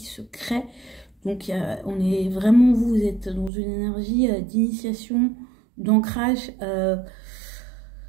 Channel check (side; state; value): left; drops out; at 3.5 s